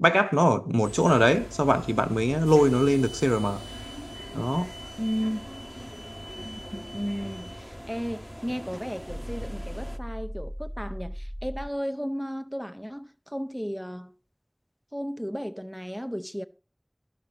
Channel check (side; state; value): both; identical; correlation 1.00